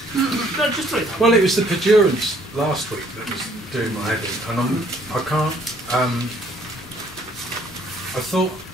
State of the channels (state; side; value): normal; both; correlation 0.62